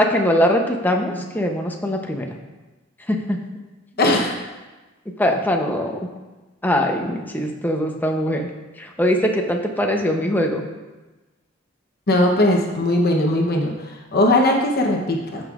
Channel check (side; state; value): both; normal; correlation 0.50